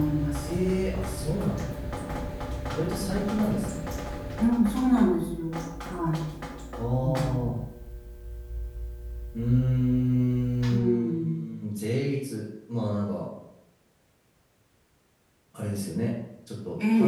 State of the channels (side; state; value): both; identical; correlation 1.00